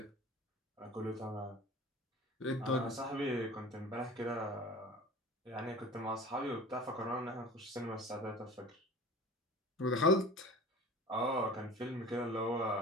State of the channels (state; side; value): normal; both; correlation 0.39